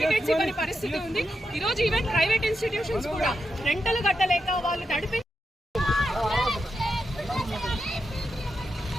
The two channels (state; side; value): normal; both; correlation 0.86